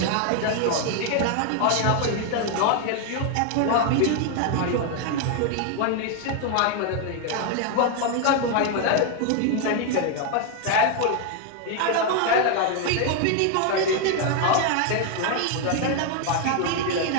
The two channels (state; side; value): different; both; correlation 0.01